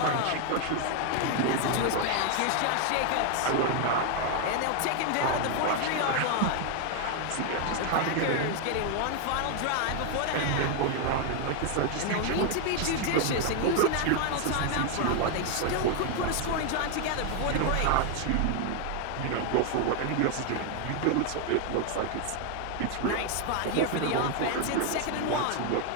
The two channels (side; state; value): both; different; correlation 0.01